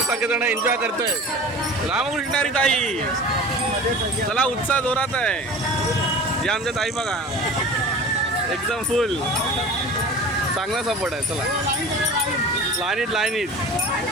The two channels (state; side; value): normal; both; correlation 0.38